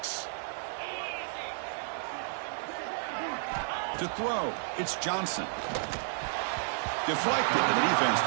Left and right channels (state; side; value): silent; left; digital silence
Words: To throw, it's Johnson. Deflected, and the defense